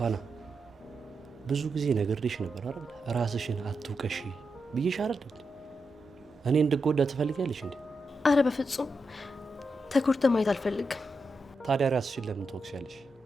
ብዙ ጊዜ ነግሬሽ ነበር አይደል? ራስሽን አትውቀሺ ብዬሽ አይደል? እኔ እንድጎዳ ትፈልጊያለሽ እንዴ? አረ በፍጹም ተጎድተህ ማየት አልፈልግም። ታዲያ ራስሽን ለምን ትወቅሻለሽ?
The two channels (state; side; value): normal; both; correlation 0.86